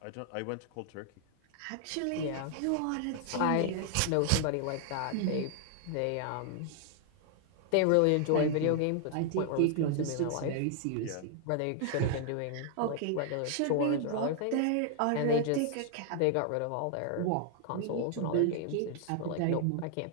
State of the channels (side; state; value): both; different; correlation 0.00